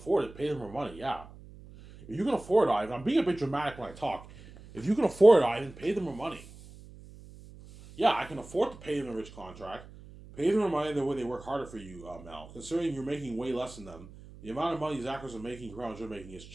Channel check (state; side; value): noise; right; hum, 18 dB below the sound